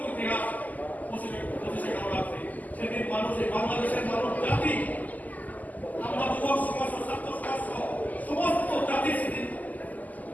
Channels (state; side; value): late; right; 0.080 ms